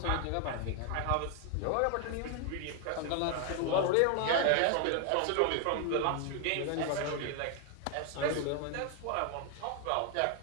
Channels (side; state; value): both; different; correlation 0.01